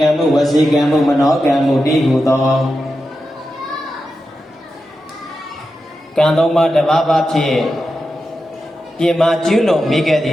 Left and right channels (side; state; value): both; normal; correlation 0.90